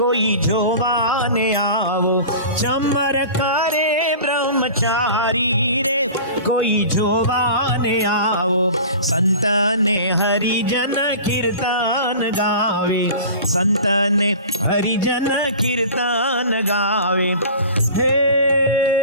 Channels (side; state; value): both; inverted; correlation -0.38